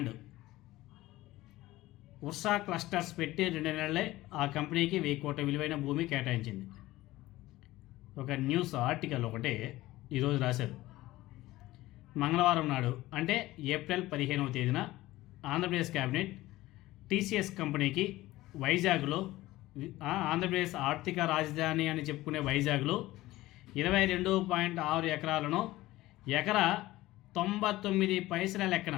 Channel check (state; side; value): quieter; right; 17.4 dB